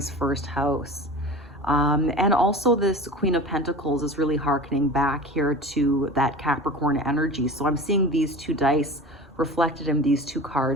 first house. And also this Queen of Pentacles is really hearkening back here to that Capricorn energy. So I'm seeing these two dice reflected in these two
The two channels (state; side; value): normal; both; correlation 0.35